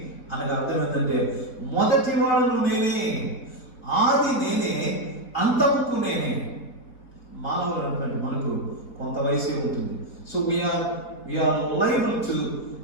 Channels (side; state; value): right; late; 4.1 ms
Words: అనగా అర్థం ఏంటంటే మొదటి వాడను నేనే, ఆది నేనే, అంతముకు నేనే. మానవుడు అంటే మనకు కొంత వయసే ఉంటుంది. So we are liable to